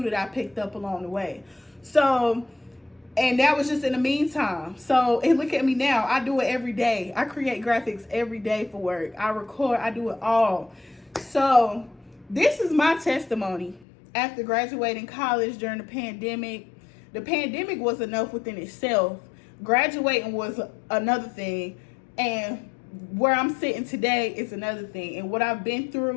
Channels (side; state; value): right; drops out; at 13.9 s